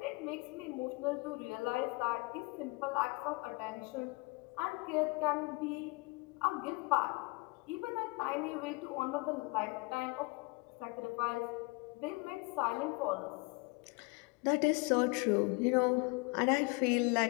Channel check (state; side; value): quieter; right; 27.1 dB